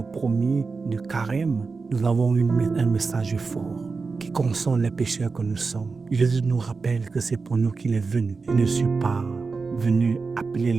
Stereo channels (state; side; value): quieter; left; 4.4 dB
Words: premier de Carême, nous avons un message fort qui console les pécheurs que nous sommes. Jésus nous rappelle que c'est pour nous qu'il est venu. Il ne suis pas venu appeler